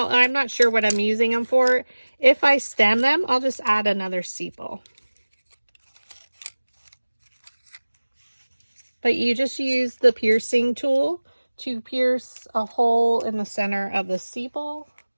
I'm not sure what I'm using them for. If I stem them, I'll just add another sepal. But you just use the piercing tool to pierce a hole in the center of the sepal.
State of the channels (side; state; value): both; inverted; correlation -1.00